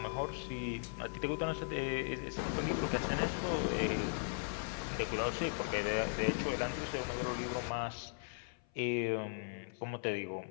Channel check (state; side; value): silent; right; 52 dB below the other